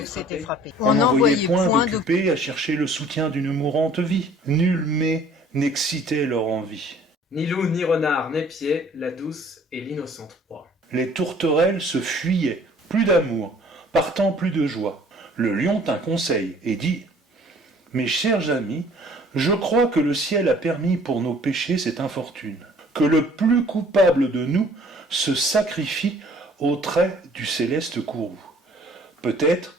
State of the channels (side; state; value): both; normal; correlation 0.55